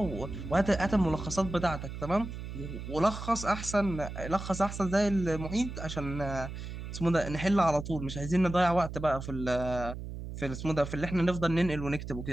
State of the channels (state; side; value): noise; right; hum, 8 dB below the sound